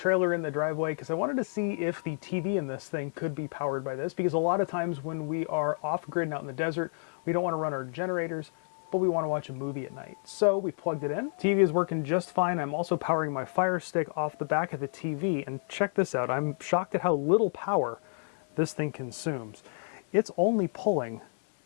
in the driveway, because I wanted to see if the TV in this thing could be powered by this, because a lot of times when we are off grid and out in the desert, we don't want to run our generators, but we want to watch a movie at night. So we plugged it in. TV is working just fine. I'm also powering my Fire Stick off the back of the TV, and check this out. I'm shocked at how little power this thing consumes. It's only pulling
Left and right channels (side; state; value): right; silent; digital silence